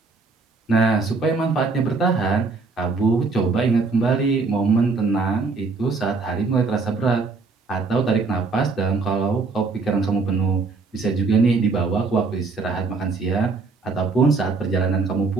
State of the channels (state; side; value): quieter; left; 4.2 dB